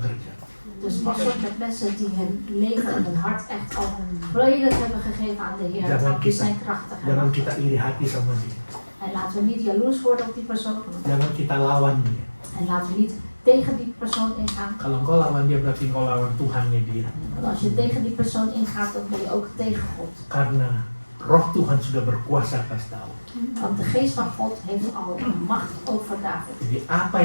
Dus pas op met mensen die hun leven en hun hart echt al volledig hebben gegeven aan de Heer. Want die zijn krachtig. Jangan kita iri hati sama dia. En laten we niet jaloers worden op die persoon. Jangan kita lawan dia. En laten we niet tegen die persoon ingaan. Kalau engkau lawan dia berarti engkau lawan Tuhannya dia. Want als je tegen die persoon ingaat, dan ben je ook tegen God. Karena Roh Tuhan sudah berkuasa atas Daud. Want de geest van God heeft al macht over David. Jadi apa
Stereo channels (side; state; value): both; inverted; correlation -1.00